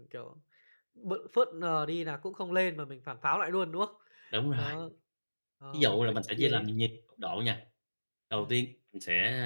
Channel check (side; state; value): both; inverted; correlation -1.00